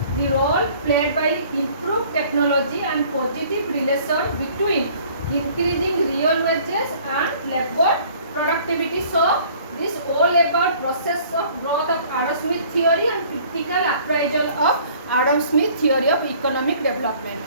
the role played by improved technology and positive relation between increasing real wages and labor productivity. So, this all about process of growth of Adam Smith theory and critical appraisal of Adam Smith theory of economic development.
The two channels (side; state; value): both; inverted; correlation -0.54